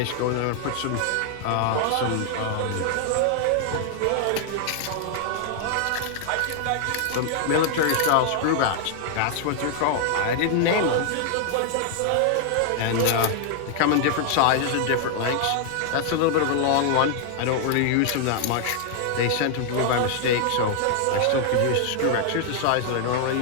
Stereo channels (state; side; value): different; both; correlation 0.00